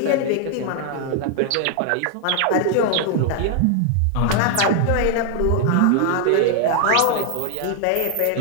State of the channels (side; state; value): both; different; correlation 0.00